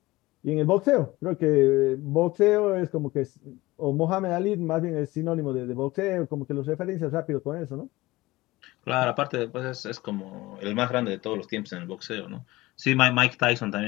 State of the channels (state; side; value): quieter; right; 19.5 dB